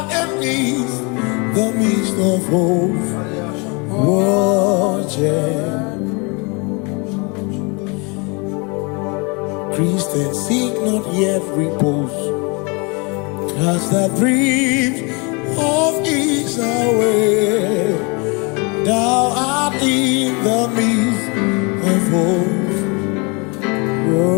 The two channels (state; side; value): quieter; right; 30.7 dB